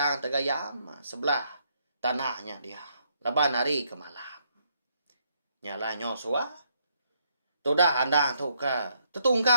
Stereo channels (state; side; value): inverted; both; correlation -0.73